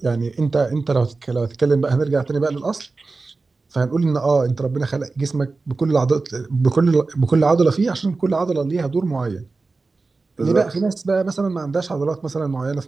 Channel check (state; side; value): quieter; left; 3.8 dB